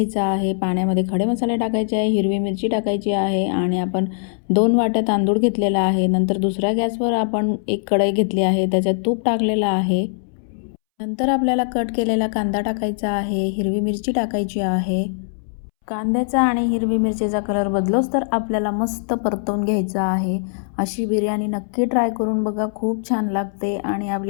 आहे. पाण्यामध्ये खडे मसाले टाकायचे आहे, हिरवी मिरची टाकायची आहे आणि आपण 2 वाट्या तांदूळ घेतलेला आहे. नंतर दुसऱ्या गॅसवर आपण एक कढई घेतली आहे, त्याच्यात तूप टाकलेलं आहे. नंतर आपल्याला कट केलेला कांदा टाकायचा आहे, हिरवी मिरची टाकायची आहे. कांद्याचा आणि हिरवी मिरचीचा कलर बदलोच तर आपल्याला मस्त परतवून घ्यायचा आहे. अशी बिर्याणी नक्की ट्राय करून बघा, खूप छान लागते आणि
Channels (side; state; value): right; silent; 65 dB below the other